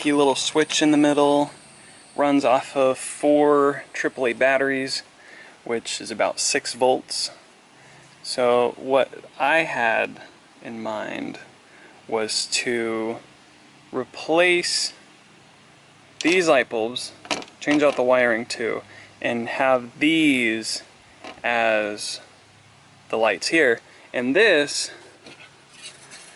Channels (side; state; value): both; identical; correlation 1.00